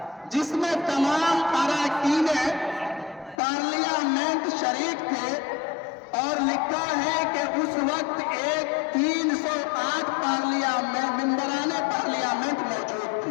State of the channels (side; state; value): right; drops out; at 3.4 s